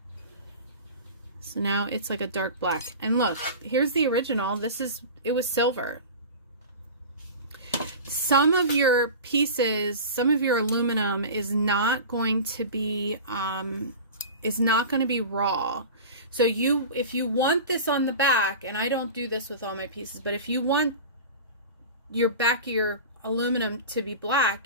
So now it's like a dark black. And look, here's the original. It was silver. Some of your pieces, some of your aluminum is not going to be raw. So if you want this on the back, and I don't do this with all my pieces, but if you want your back of your aluminum to be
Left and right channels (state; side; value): inverted; both; correlation -0.33